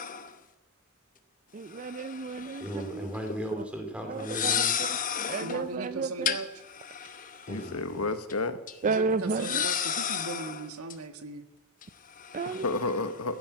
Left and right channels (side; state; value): both; normal; correlation 0.00